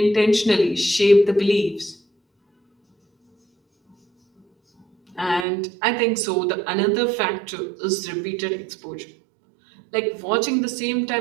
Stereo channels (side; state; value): left; drops out; at 5.5 s